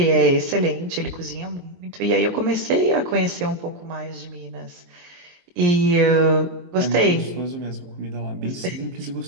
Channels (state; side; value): late; left; 23 ms